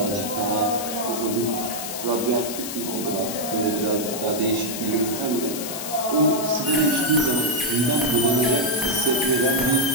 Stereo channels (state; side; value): noise; left; hiss, 7 dB below the sound